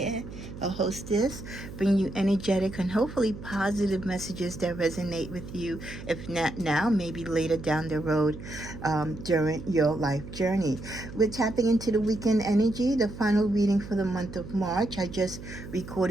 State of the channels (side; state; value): right; noise; hum, 12 dB below the sound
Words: a hostess, bringing you energetic and hopefully positive messages that resonate with you. If not now, maybe later down the road during your life journey. We're tapping into the weekend energy, the final reading for the month of March. I just